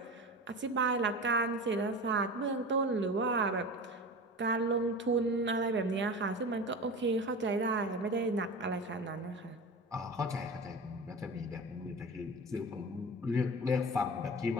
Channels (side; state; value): both; normal; correlation 0.31